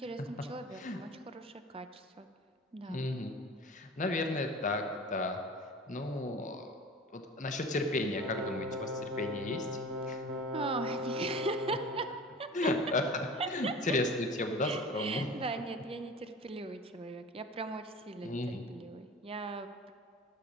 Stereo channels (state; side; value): normal; both; correlation 0.38